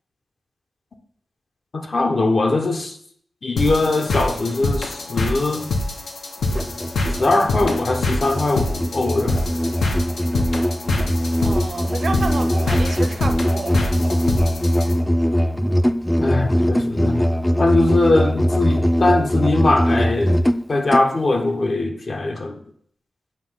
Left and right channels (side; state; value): both; normal; correlation 0.95